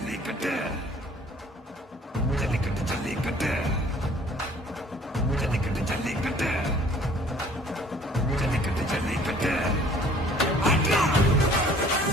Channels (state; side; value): normal; both; correlation 0.54